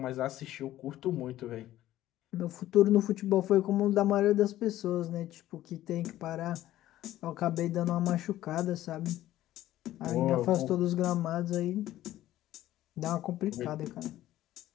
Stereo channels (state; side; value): quieter; right; 14.1 dB